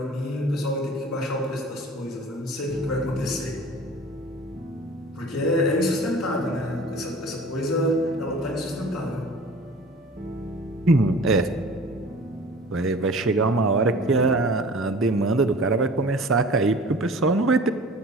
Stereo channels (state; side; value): normal; both; correlation 0.44